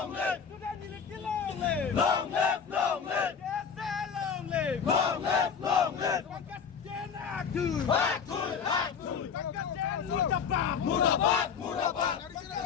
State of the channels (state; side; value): quieter; right; 6.7 dB